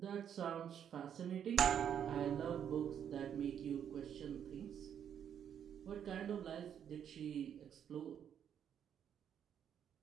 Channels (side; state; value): left; quieter; 8.9 dB